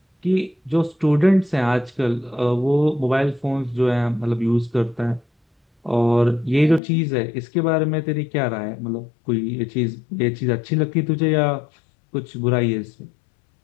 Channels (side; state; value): right; drops out; at 6.8 s